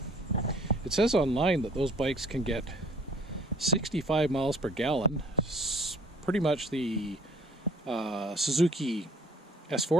says online that those bikes can get 65 miles per gallon. Pretty much the Suzuki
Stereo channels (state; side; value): normal; both; correlation 0.56